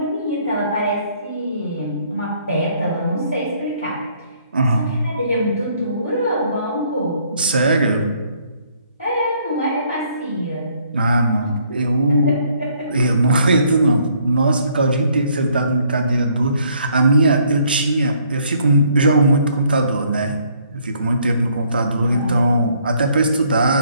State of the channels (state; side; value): inverted; both; correlation -0.65